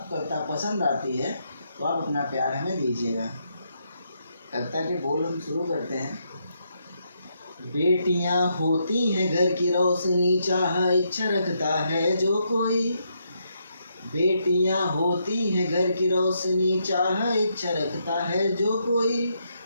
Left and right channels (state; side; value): inverted; both; correlation -0.78